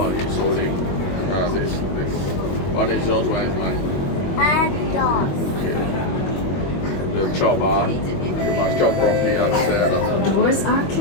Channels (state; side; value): late; right; 21 ms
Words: He's holding this. One is yours, one is mine. And yours. Okay. The job, you must job properly upstairs. Doors are 環